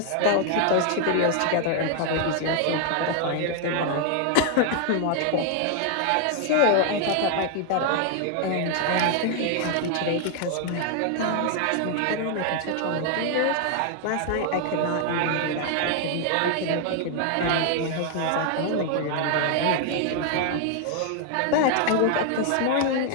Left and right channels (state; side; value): different; both; correlation 0.00